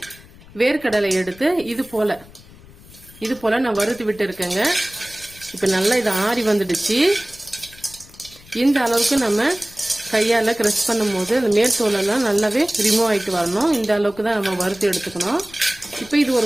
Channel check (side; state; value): left; noise; rumble, 22 dB below the sound